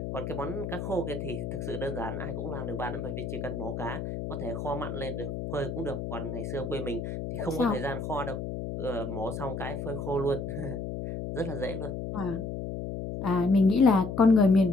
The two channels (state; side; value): noise; left; hum, 5 dB below the sound